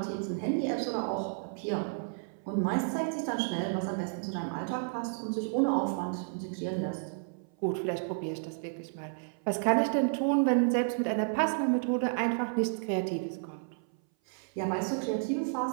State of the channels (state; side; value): silent; left; 57 dB below the other